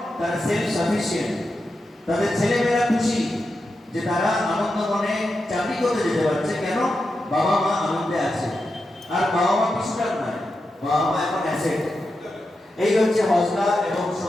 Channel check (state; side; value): normal; both; correlation 0.88